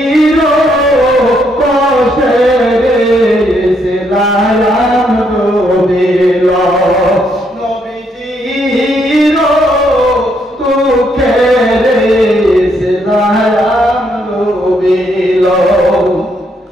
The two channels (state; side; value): normal; both; correlation 0.74